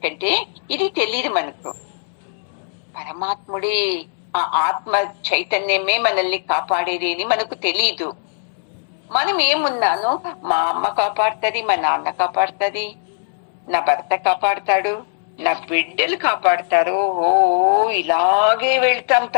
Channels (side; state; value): right; silent; 66 dB below the other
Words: ఇది తెలియదు మనకు. పరమాత్ముడే, ఆ ఆత్మ చైతన్యమే మనల్ని కాపాడేది అని మనకు తెలీదు. మనం ఏమున్నాను, మా అమ్మ కాపాడుతుంది, మా నాన్న కాపాడుతుంది, నా భర్త కాపాడుతాడు, నా బిడ్డలు కాపాడుతారు, ఓ ఇలాగే వెళ్తాం